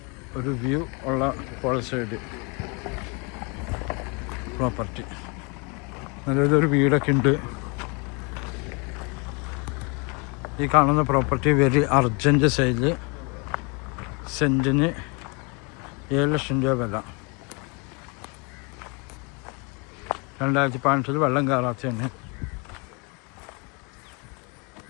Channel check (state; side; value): quieter; right; 32.0 dB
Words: ഒരു വ്യൂ ഉള്ള പുഴ സൈഡ് പ്രോപ്പർട്ടി. നല്ലൊരു വീടൊക്കെ ഉണ്ട്. ഈ കാണുന്ന പ്രോപ്പർട്ടി വെരി അർജൻറ്റ് സെയിൽ. സെൻറ്റിന് 7 ലക്ഷം രൂപ വില. 2015 വെള്ളം കയറാത്തതാണ്.